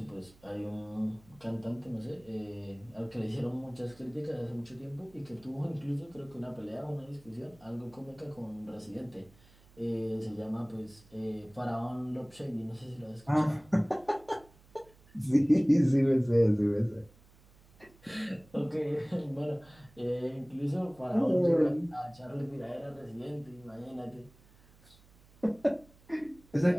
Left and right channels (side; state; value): right; noise; hum, 27 dB below the sound